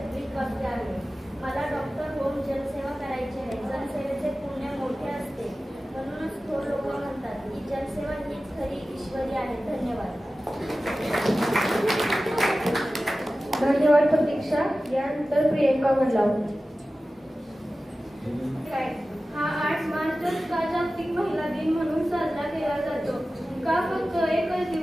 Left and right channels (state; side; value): normal; both; correlation 0.95